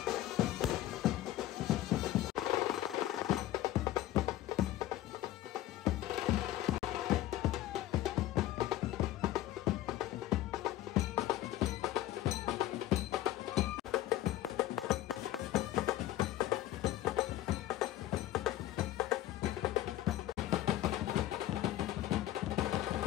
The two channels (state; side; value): quieter; right; 14.2 dB